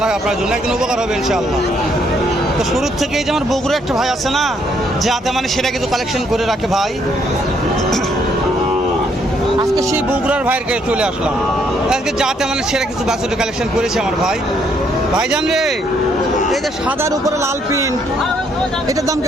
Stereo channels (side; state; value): both; normal; correlation 0.70